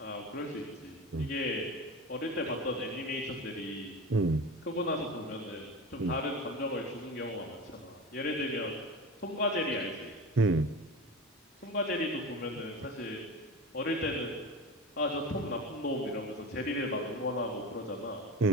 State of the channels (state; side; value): normal; both; correlation 0.29